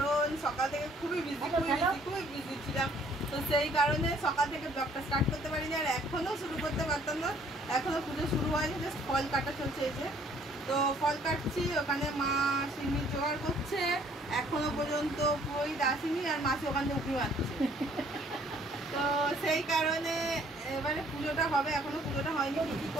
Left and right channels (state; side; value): normal; both; correlation 0.60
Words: সকাল থেকে খুবই বিজি ছিলাম। তো সেই কারণে সকাল থেকে ব্লগটা স্টার্ট করতে পারিনি আর এখনও শুরু করতে পারতাম না। এখনও পুজো শুরু হয়নি, জাস্ট ফল কাটা চলছে। এই যে তো ফল কাটছি, ওখানে মা সিমির জোগাড় করছে, এখনো পর্যন্ত পুরোহিত আসেনি আর মাসি ওখান থেকে উঠে মারছে। তো সেই কারণে এবারে পুজোটা হবে, এখনো পুজোটা হয়নি। কী